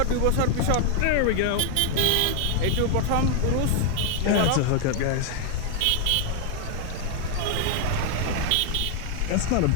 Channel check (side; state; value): both; different; correlation 0.00